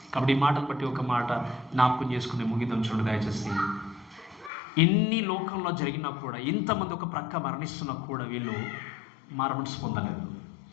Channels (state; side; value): drops out; right; at 4.5 s